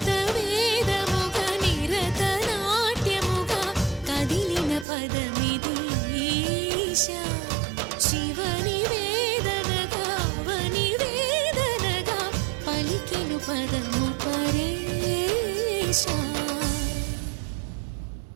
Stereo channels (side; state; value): left; drops out; at 4.9 s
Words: వేదముగ నిరత నాట్యముగ కదిలిన పదమిది ఈశా శివని వేదనగా వని వేదనగా పలికెను పదము పరేశా